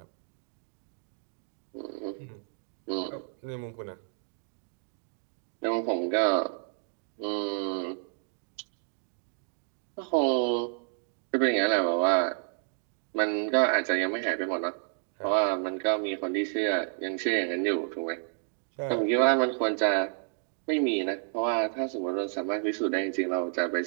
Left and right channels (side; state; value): left; silent; digital silence